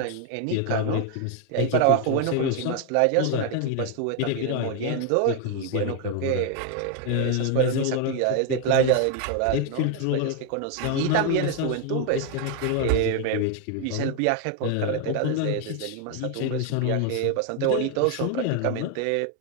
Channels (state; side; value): different; both; correlation 0.01